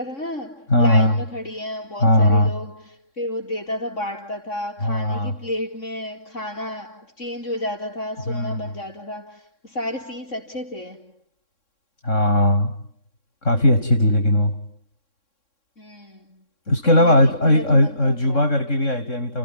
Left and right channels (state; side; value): late; right; 3.6 ms